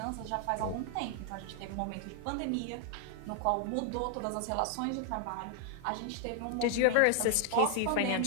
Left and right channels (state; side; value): different; both; correlation 0.00